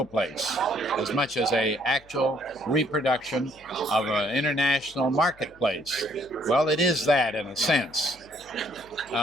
place, as much as a actual reproduction of an international marketplace. Well, it is that in a sense.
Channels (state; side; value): noise; left; hum, 27 dB below the sound